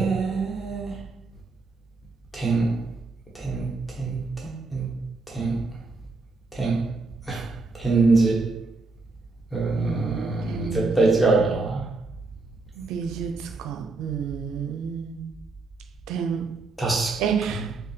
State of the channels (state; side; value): quieter; left; 3.6 dB